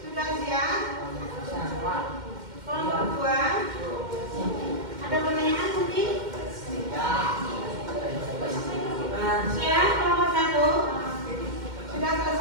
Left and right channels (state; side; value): late; left; 2.1 ms